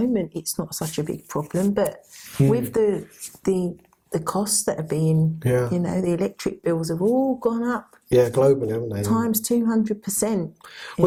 it's not such a big problem, but with the costs that are being, you know, the electric bills have all gone up. Yeah, globally, haven't they? Times 200%.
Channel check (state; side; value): identical; both; correlation 1.00